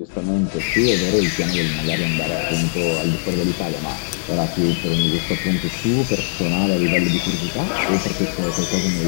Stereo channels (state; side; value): silent; right; 66 dB below the other